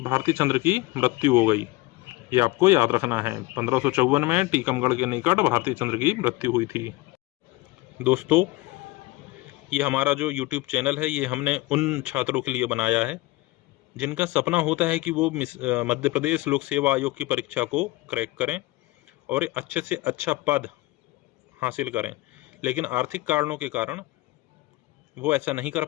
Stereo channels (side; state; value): right; quieter; 19.9 dB